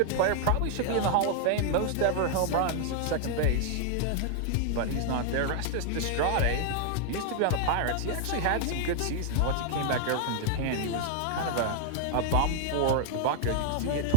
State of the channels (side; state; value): both; different; correlation -0.01